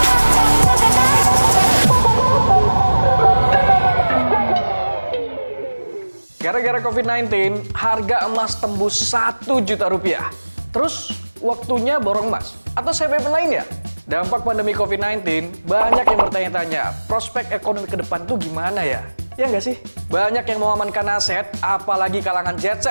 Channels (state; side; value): inverted; both; correlation -1.00